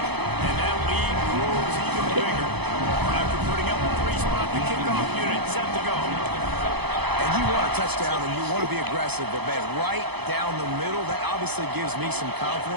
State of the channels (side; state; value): left; late; 0.98 ms